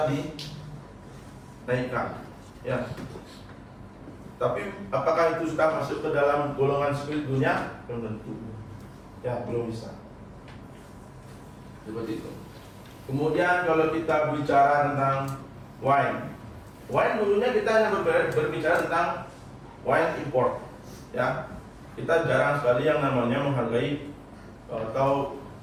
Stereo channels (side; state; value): both; identical; correlation 1.00